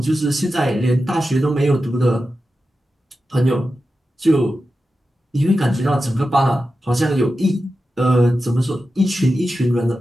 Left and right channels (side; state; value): both; normal; correlation 0.91